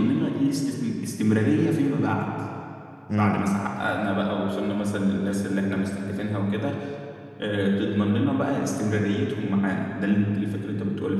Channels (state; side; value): identical; both; correlation 1.00